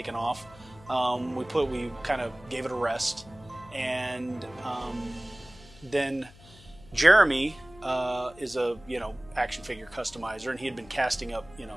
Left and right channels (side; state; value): left; noise; hum, 22 dB below the sound